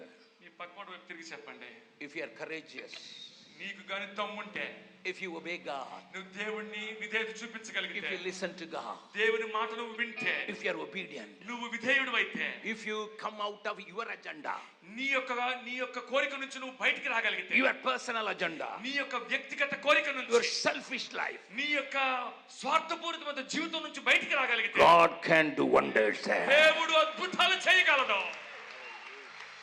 మీ పక్కన వైపు తిరిగి చెప్పండి. If you are courageous, నీకు గాని దమ్ముంటే, if you obey God, నువ్వు దేవుణ్ణి విధేయత if చూపించగలిగితే, you listen to God, దేవుని మాట నువ్వు వింటే, if you are obedient, నువ్వు విధేయుడు అయితే, if you come out of your agenda, నీ యొక్క కోరిక నుంచి నువ్వు బయటికి రాగలిగితే, your personal agenda, నీ యొక్క వ్యక్తిగత కోరిక your నుంచి, selfish life, నీ యొక్క స్వార్థపూరితమైన జీవితం నుంచి బయటికి రాగలిగితే, God can do wonders there. దేవుడు అద్భుతాలు చేయగలడు.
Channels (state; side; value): identical; both; correlation 1.00